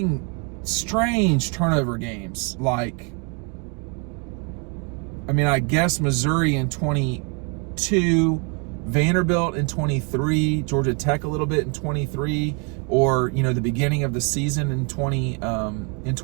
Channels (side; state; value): left; quieter; 34.9 dB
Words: strange turnover games, like, I mean, I guess Missouri in 22, Vanderbilt in 23, Georgia Tech a little bit in 23, or, you know, the beginning of the season in 23.